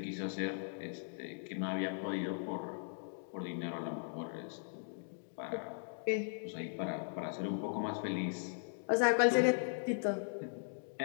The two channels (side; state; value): right; silent; digital silence